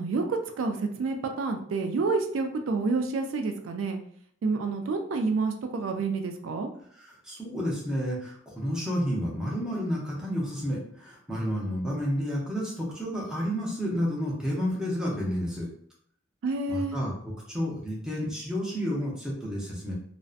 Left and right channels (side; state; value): both; normal; correlation 0.66